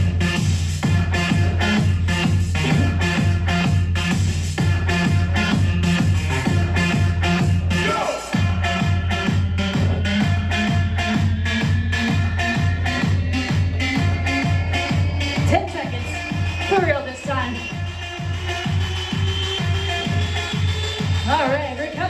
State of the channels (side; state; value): both; identical; correlation 1.00